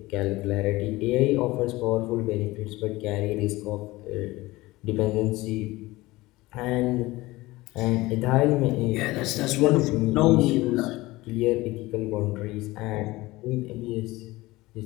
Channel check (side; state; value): right; quieter; 19.7 dB